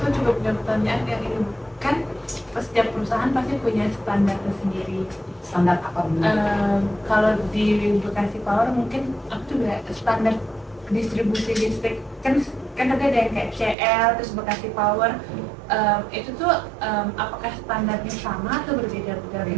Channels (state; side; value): drops out; left; at 13.8 s